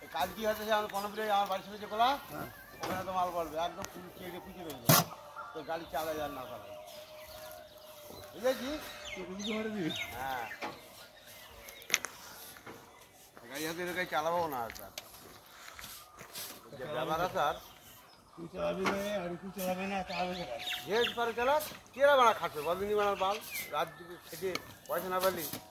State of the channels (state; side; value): identical; both; correlation 1.00